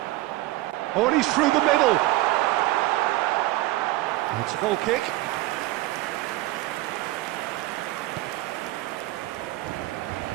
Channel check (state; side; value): quieter; left; 17.4 dB